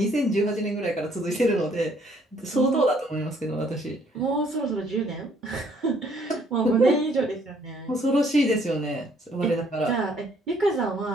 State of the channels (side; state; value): both; normal; correlation 0.64